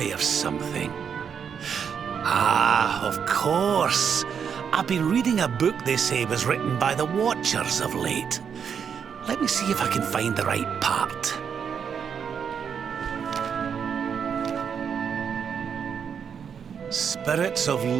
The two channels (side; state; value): left; quieter; 7.2 dB